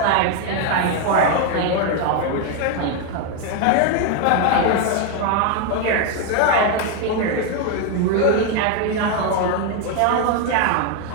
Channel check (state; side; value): different; both; correlation 0.01